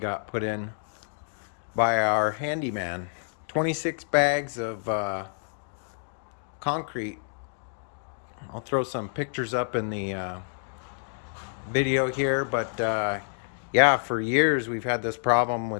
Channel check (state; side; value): silent; right; digital silence